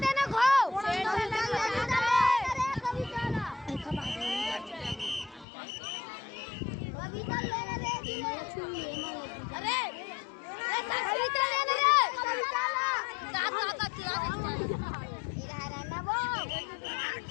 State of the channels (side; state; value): right; drops out; at 5.5 s